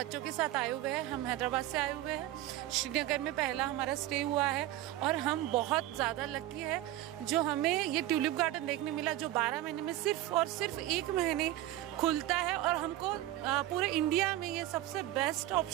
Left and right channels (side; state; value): left; quieter; 14.8 dB